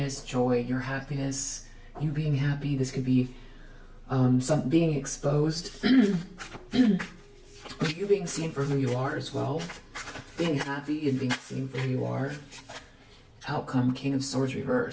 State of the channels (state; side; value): identical; both; correlation 1.00